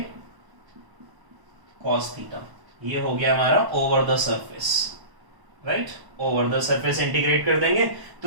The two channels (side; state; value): left; late; 1.0 ms